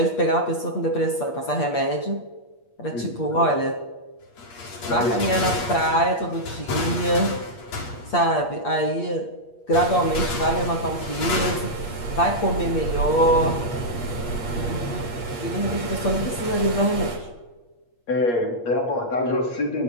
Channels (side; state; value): right; late; 8.5 ms